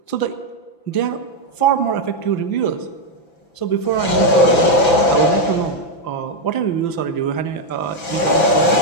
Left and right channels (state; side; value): late; right; 5.9 ms